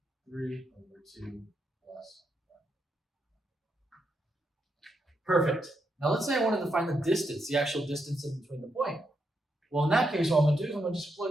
3 over 2 plus 1. Perfect. Now let's say I wanted to find the distance, the actual distance in between the point. Well, in that case, what I'm going to do is I'm going to just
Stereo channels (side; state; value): both; normal; correlation 0.81